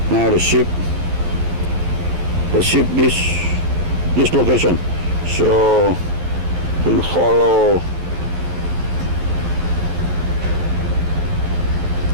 now the ship this location. So we follow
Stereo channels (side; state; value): left; late; 11 ms